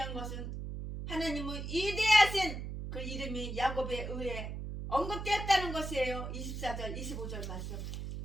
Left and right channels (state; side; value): noise; right; hum, 6 dB below the sound